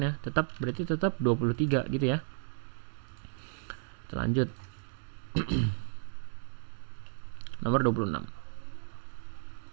berarti tetap 23 gitu ya. Kita lanjut. Nomor 26.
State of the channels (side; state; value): left; silent; digital silence